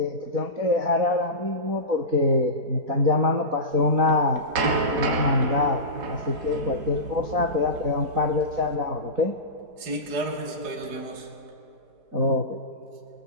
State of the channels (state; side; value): late; left; 4.9 ms